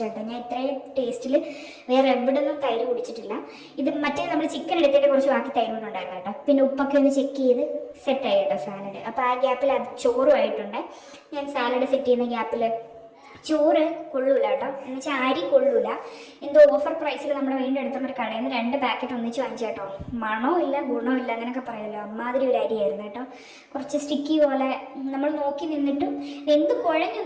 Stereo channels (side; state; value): both; identical; correlation 1.00